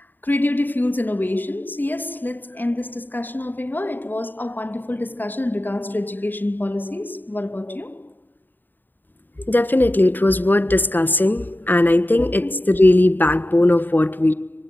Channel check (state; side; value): late; right; 0.091 ms